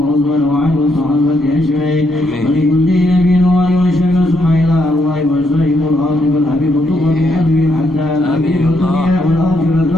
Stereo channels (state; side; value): normal; both; correlation 0.76